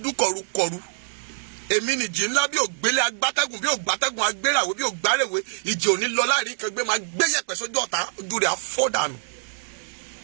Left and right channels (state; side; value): silent; left; digital silence